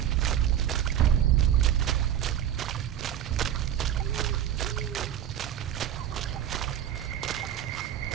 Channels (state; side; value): quieter; left; 10.5 dB